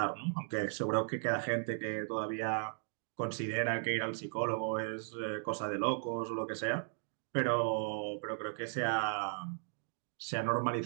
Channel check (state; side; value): silent; left; 53 dB below the other